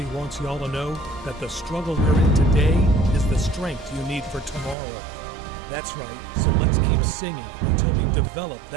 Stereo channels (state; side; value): drops out; left; at 4.8 s